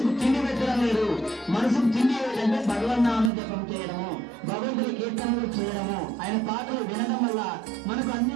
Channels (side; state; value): left; drops out; at 3.3 s